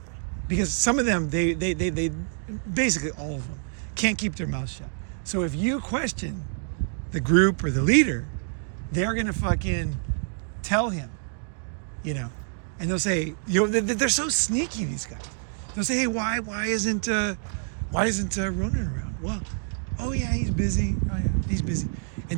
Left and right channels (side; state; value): left; silent; 60 dB below the other